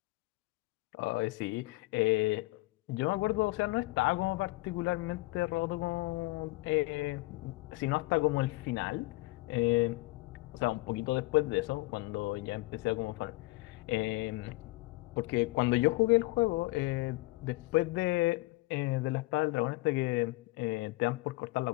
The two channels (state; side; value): quieter; right; 21.7 dB